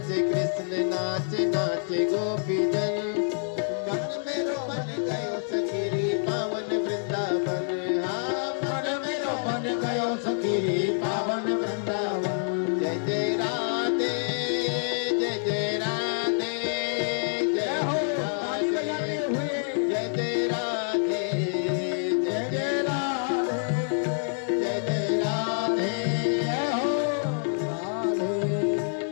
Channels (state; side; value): silent; right; digital silence